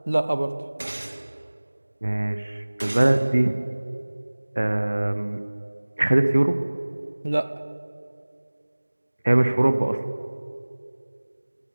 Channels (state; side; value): inverted; both; correlation -1.00